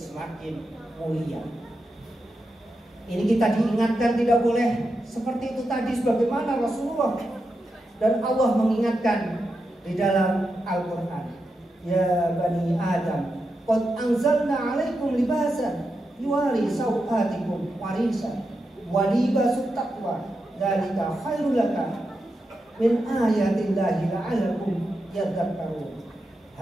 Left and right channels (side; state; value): both; normal; correlation 0.87